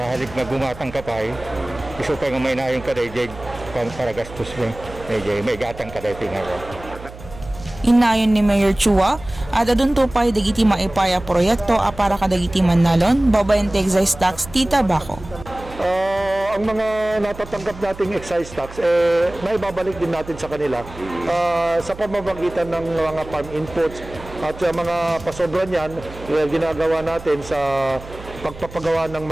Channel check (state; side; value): noise; right; hum, 16 dB below the sound